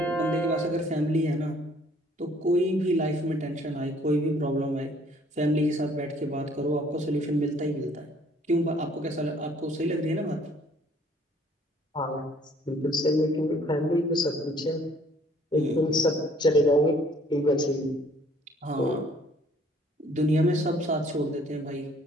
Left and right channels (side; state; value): both; normal; correlation 0.59